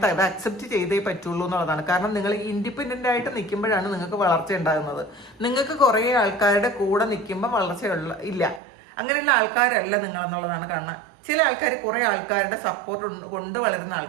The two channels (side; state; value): left; drops out; at 8.6 s